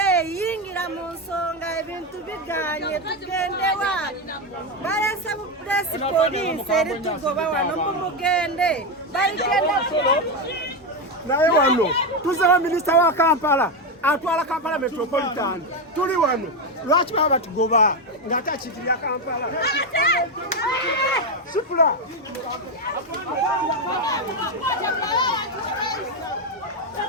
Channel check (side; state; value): both; normal; correlation 0.09